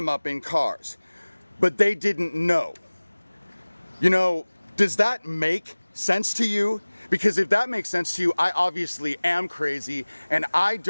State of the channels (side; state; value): both; inverted; correlation -1.00